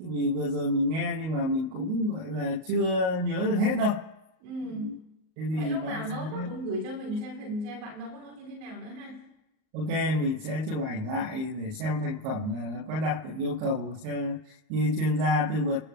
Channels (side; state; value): left; late; 38 ms